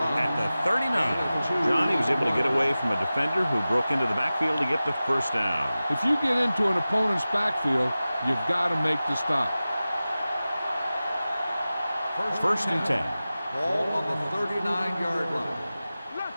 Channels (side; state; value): both; inverted; correlation -0.96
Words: at the 39. Johnny was able to get away from a defender who broke into the backfield to get the first down. If you get into an opponent's backfield, you've got to make the stop. First and 10. Ball on the 39-yard line.